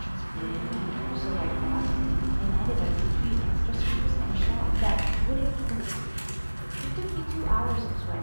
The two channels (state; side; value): inverted; both; correlation -1.00